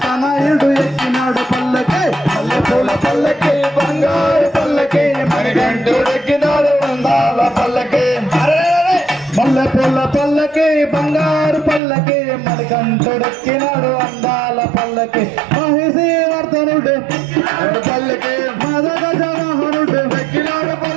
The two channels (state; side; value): drops out; left; at 11.8 s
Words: తనయుడు ఎక్కినాడు పల్లకి మల్లెపూల పల్లకి బంగారు పల్లకి మణికంఠుడు ఎక్కినాడు అందాల పల్లకి మల్లెపూల పల్లకి బంగారు పల్లకి మణికంఠుడెక్కినాడు అందాల పల్లకి మహిషీవర్ధనుడు పల్లకి మదగజ వాహనుడు ఎక్కినాడు